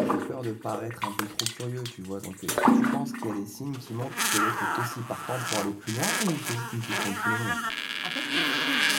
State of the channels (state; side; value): identical; both; correlation 1.00